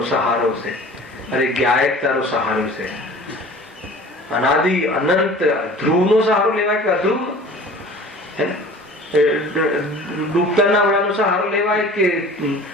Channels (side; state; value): both; normal; correlation 0.44